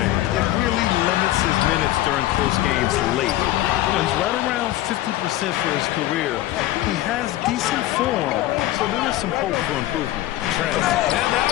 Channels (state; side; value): quieter; right; 15.1 dB